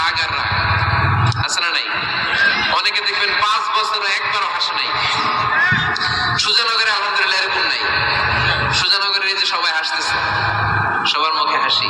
আর রাগ, আছে না নাই? অনেকে দেখবেন 5 বছর একবারও হাসে নাই। সুজানগরে আলহামদুলিল্লাহ এরকম নাই। সুজানগরের এই যে সবাই হাসতেছে, সবার মুখে হাসি।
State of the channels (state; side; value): identical; both; correlation 1.00